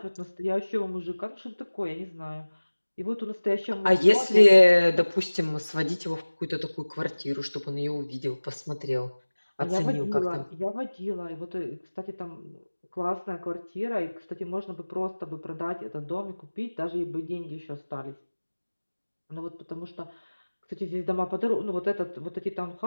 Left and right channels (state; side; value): inverted; both; correlation -1.00